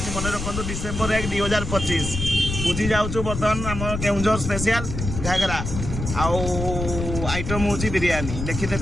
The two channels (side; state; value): left; noise; rumble, 5 dB below the sound